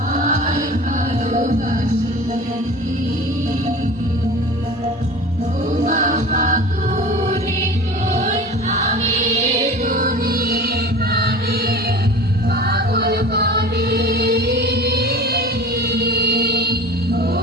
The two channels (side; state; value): both; normal; correlation 0.37